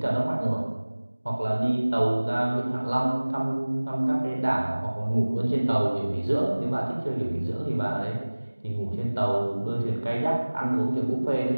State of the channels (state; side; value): inverted; both; correlation -1.00